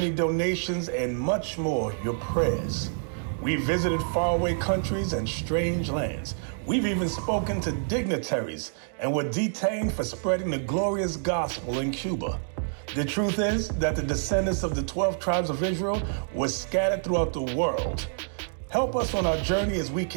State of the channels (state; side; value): silent; left; digital silence